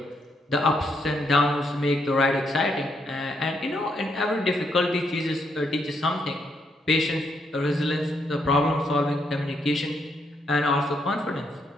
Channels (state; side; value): normal; both; correlation 0.76